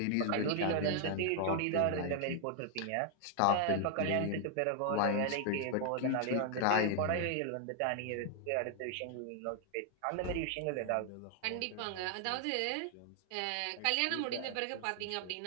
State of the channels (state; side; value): different; both; correlation 0.00